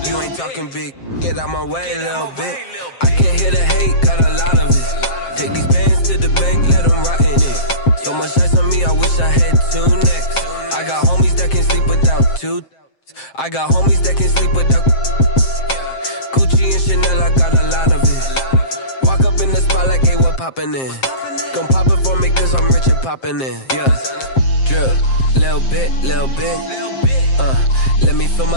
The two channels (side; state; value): right; late; 7.6 ms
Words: You ain't talking big. Get out my way, little bit. I can't hear the hate, got a lot of it. Take these bands to the bank, let them rot in it. So much ice on me, I wish I had 2 necks. I got homies that can sleep without 2. I got homies that can sleep without Gucci and Chanel, I got a lot of it. Walk up in the spot like, hey, what poppin' in? Gon' pop it for me cause I'm rich and poppin' in. Yeah, drip, little bit. Let me feel